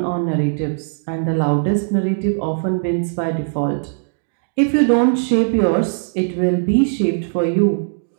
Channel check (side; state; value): left; silent; digital silence